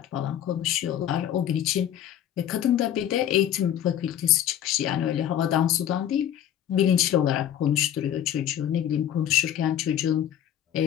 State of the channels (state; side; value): quieter; right; 10.7 dB